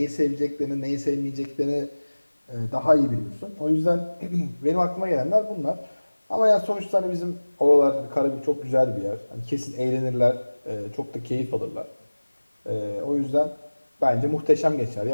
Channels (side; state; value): both; inverted; correlation -1.00